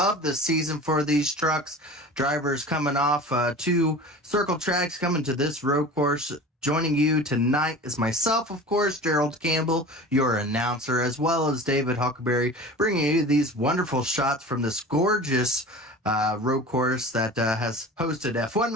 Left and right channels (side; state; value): both; normal; correlation 0.37